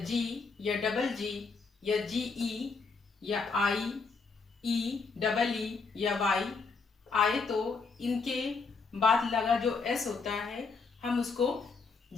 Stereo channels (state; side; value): quieter; right; 4.6 dB